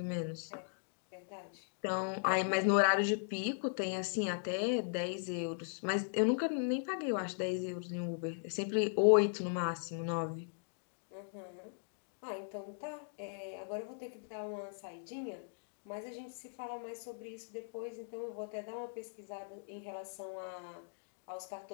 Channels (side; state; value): right; silent; digital silence